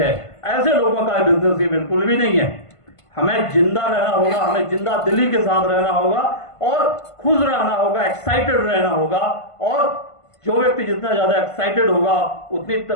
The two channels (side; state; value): right; late; 1.5 ms